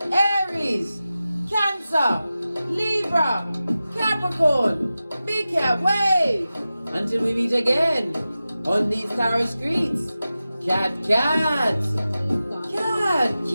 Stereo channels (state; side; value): inverted; both; correlation -0.94